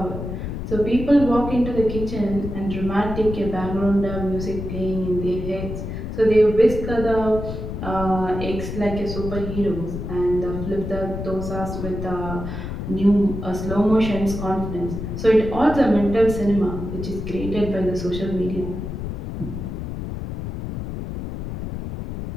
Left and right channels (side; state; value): left; noise; rumble, 6 dB below the sound